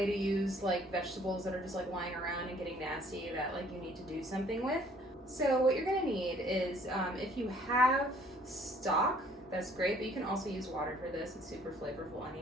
to use like vegetables that are just like lying around and getting nasty that like you need to do something with. So what you're gonna need is if you have stock, that's great, but you can also use water for this. It's super flavorful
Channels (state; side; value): normal; both; correlation 0.58